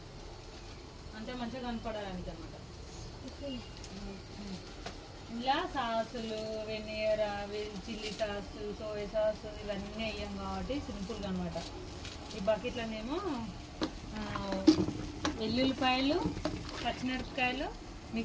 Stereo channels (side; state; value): both; identical; correlation 1.00